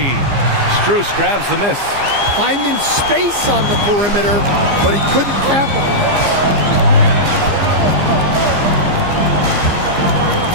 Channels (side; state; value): left; late; 15 ms